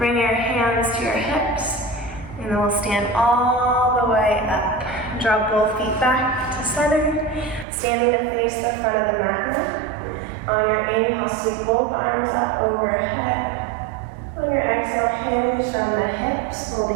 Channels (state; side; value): drops out; left; at 7.7 s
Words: your hands to your hips, and then we'll stand all the way up. Draw both feet back to center, standing to face the front of the mat now. On your inhale, sweep both arms up overhead. On your exhale, hinge from the hips,